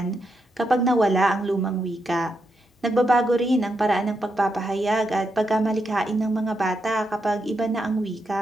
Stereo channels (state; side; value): normal; both; correlation 0.82